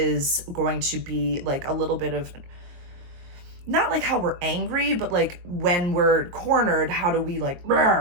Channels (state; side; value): late; left; 22 ms